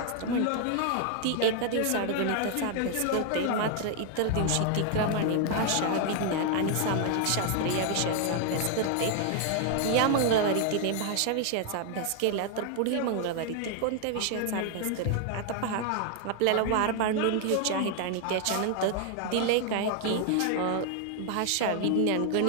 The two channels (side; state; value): both; different; correlation 0.00